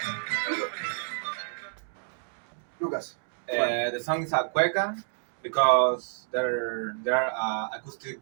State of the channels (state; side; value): silent; left; digital silence